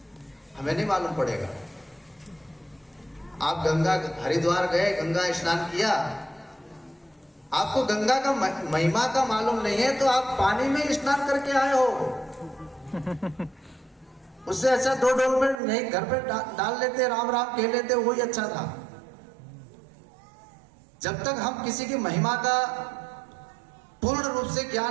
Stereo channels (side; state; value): left; drops out; at 15.6 s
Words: हमें नहीं मालूम पड़ेगा। आप गंगा हरिद्वार गए, गंगा स्नान किया, आपको गंगा का महिमा का मालूम नहीं है तो आप पानी में स्नान करके आए हो। उससे अच्छा 2 डोल में नहीं घर पे डाल लेते, राम राम कह लेते, वही अच्छा था। जब तक हम किसी की महिमा का पूर्ण रूप से